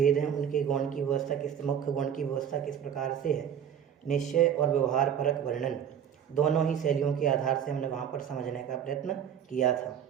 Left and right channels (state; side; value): quieter; left; 8.7 dB